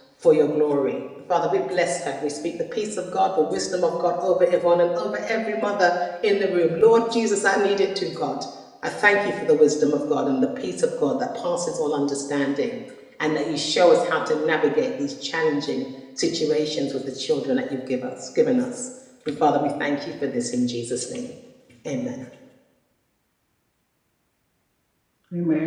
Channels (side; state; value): both; identical; correlation 1.00